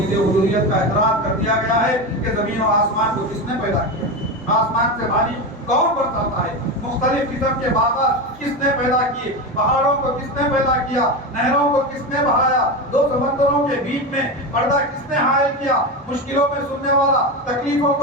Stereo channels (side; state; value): both; normal; correlation 0.19